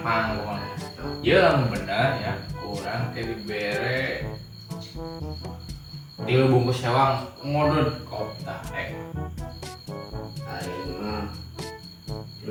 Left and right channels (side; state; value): both; identical; correlation 1.00